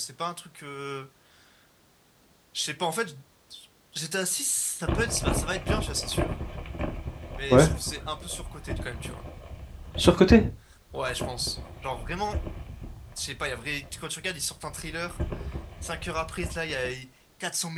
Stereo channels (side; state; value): both; identical; correlation 1.00